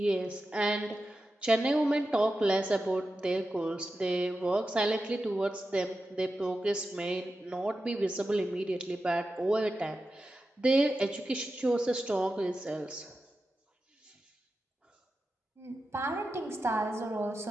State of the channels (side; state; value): both; normal; correlation 0.91